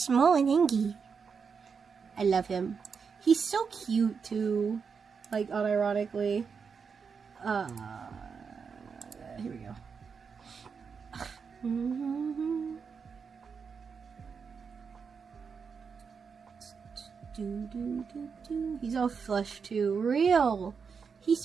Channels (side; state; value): left; quieter; 5.9 dB